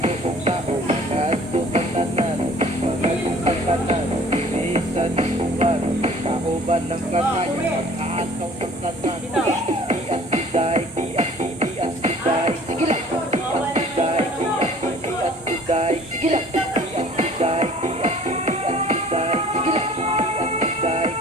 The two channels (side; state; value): both; normal; correlation 0.51